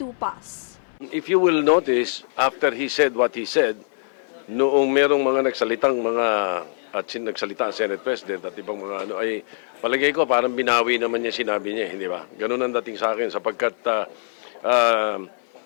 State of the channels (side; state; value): right; silent; 57 dB below the other